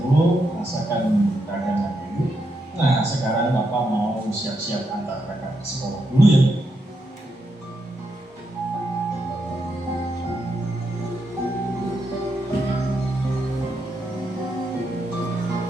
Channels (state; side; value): normal; both; correlation 0.82